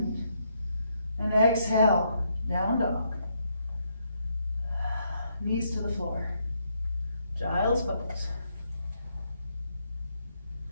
And exhale, down dog. Knees to the floor. Child's pose.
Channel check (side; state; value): both; inverted; correlation -0.75